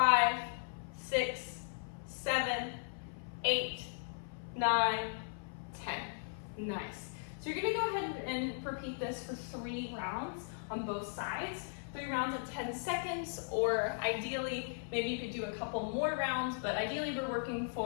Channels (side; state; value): right; silent; 53 dB below the other